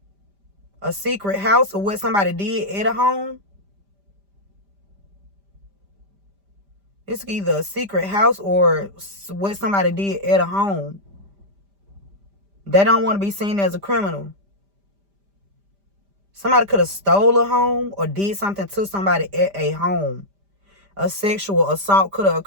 A secret house or what somebody did at a home. It's either a secret house or what somebody did at a home. They don't want to be seen as a criminal. Somebody could have stole a home or did something to somebody at a home. A sexual assault could have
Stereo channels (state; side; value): late; left; 5.0 ms